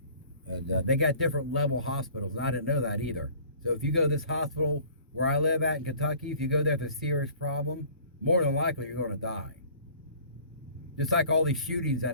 And they got different level hospitals, and I didn't know that either. So if you go to this hospital where I live at in Kentucky, if you go there with a serious problem, more than likely you're going to die. Just like all these shootings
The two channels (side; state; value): both; inverted; correlation -0.50